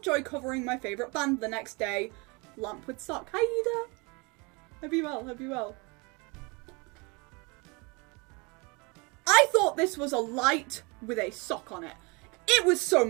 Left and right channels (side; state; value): left; quieter; 29.0 dB